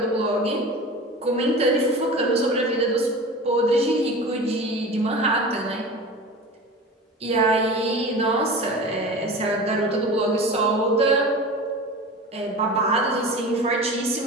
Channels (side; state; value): both; normal; correlation 0.34